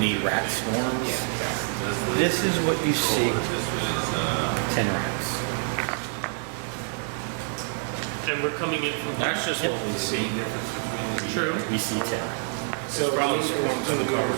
rat swarms? Yeah, exactly. This is what you see. This was, 10 rats. And we're coming in from That's just what we see. True. We see 10. So probably swarms in the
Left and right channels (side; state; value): left; silent; 56 dB below the other